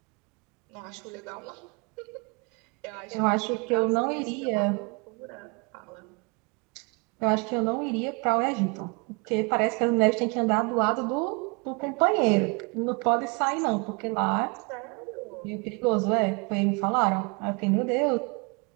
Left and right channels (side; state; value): left; quieter; 31.6 dB